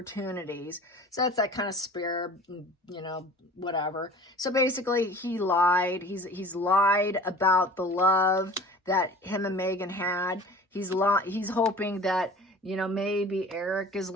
So that's that kind of spare, whatever. So basically he lied. He's lied about the love that him and Megan had. He's hoping that, maybe Eric is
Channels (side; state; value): both; normal; correlation 0.43